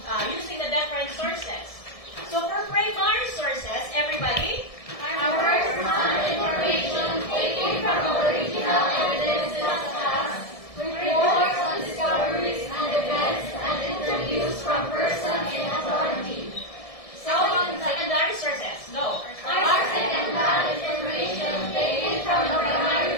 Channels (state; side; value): late; right; 1.7 ms